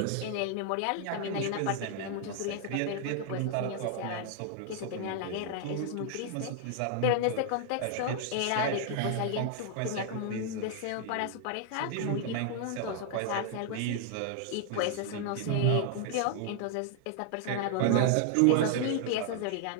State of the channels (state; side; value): different; both; correlation 0.00